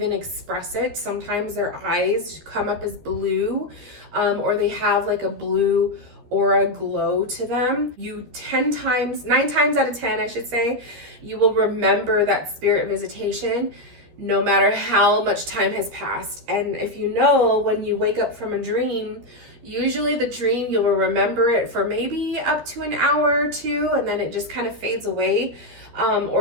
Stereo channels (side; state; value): left; late; 13 ms